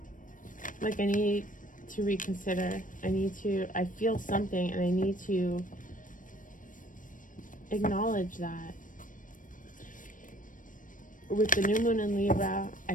like I need to reconsider. I feel something and I need to acknowledge that. With the new moon in Libra, I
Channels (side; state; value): right; late; 0.38 ms